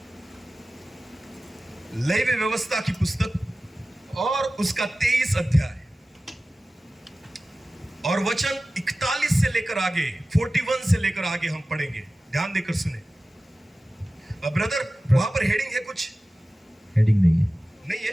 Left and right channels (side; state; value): both; normal; correlation 0.96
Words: लेवी व्यवस्था की पुस्तक और उसका 23 अध्याय और वचन 41 से लेकर आगे, 41 से लेकर आगे हम पढ़ेंगे। ध्यान देकर सुने। ब्रदर, वहां पर हेडिंग है कुछ? हेडिंग नहीं है। नहीं